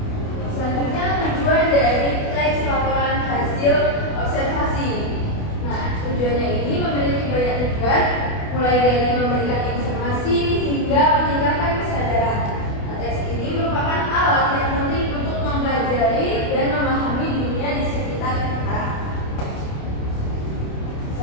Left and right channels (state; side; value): late; right; 28 ms